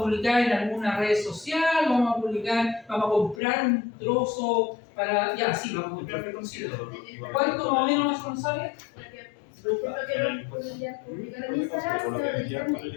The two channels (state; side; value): drops out; right; at 3.4 s